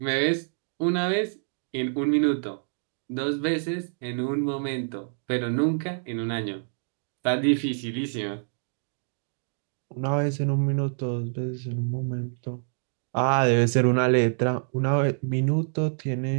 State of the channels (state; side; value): silent; left; digital silence